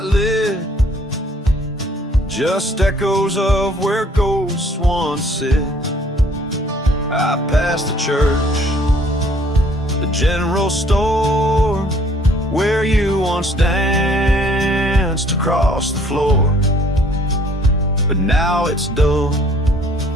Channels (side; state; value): both; normal; correlation 0.59